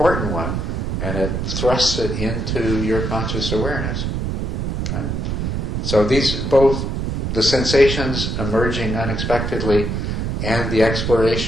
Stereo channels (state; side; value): noise; right; rumble, 1 dB below the sound